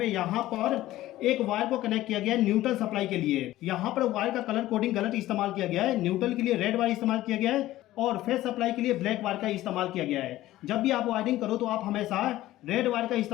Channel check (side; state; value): right; quieter; 15.5 dB